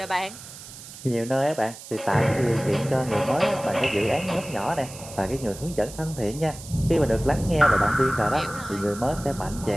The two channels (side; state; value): right; noise; hiss, 15 dB below the sound